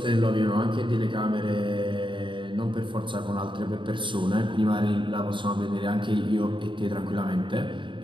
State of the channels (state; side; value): late; left; 0.24 ms